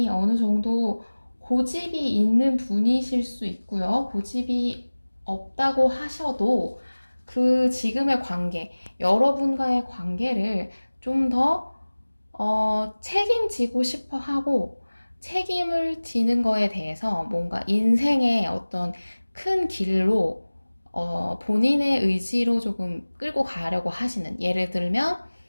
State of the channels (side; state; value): both; inverted; correlation -1.00